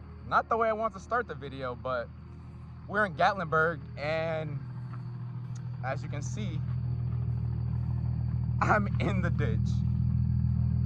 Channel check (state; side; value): identical; both; correlation 1.00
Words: the way I want to start the video, but we're in Gatlinburg, and as you can see, I'm in the ditch.